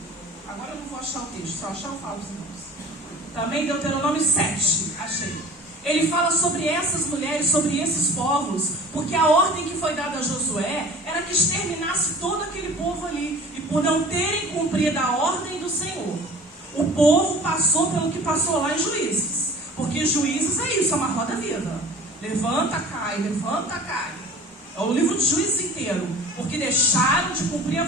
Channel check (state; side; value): normal; both; correlation 0.43